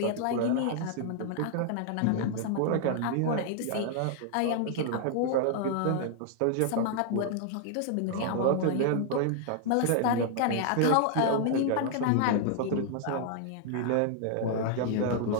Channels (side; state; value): both; different; correlation 0.00